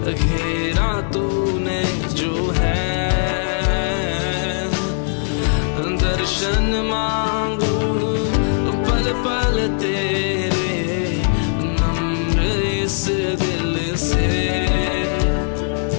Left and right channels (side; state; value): right; silent; digital silence